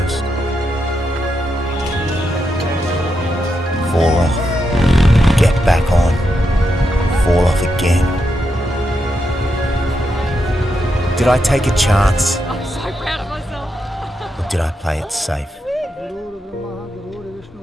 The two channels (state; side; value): normal; both; correlation 0.84